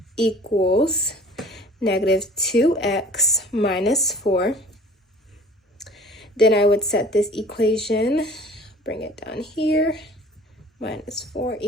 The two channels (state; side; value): normal; both; correlation 0.48